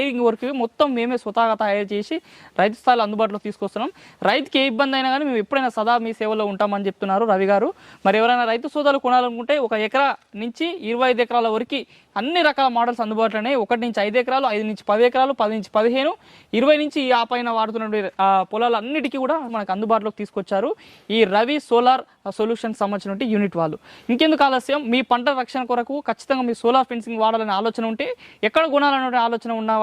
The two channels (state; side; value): identical; both; correlation 1.00